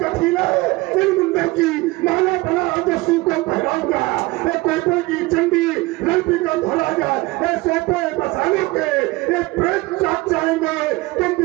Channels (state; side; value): quieter; left; 21.4 dB